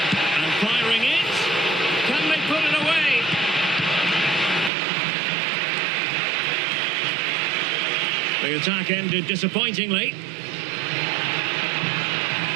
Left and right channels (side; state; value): left; drops out; at 4.7 s